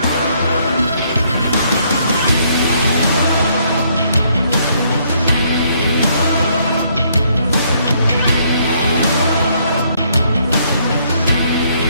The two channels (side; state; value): both; inverted; correlation -0.69